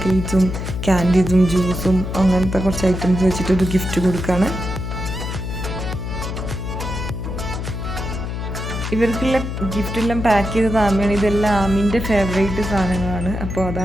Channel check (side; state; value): left; noise; hum, 5 dB below the sound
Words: ക്യാൻഡീസും ജ്യൂസും അങ്ങനത്തെ കുറച്ച് ഐറ്റംസ് വെച്ചിട്ടൊരു ഗിഫ്റ്റ് കൊടുക്കുകയാണ്. ഇവർക്കുള്ള ഗിഫ്റ്റെല്ലാം പാക്ക് ചെയ്തത് ആമിയാണ്. ഇതെല്ലാം ആമിൻ്റെ ഫേവറേറ്റ് സാധനങ്ങളാണ്. അപ്പോൾ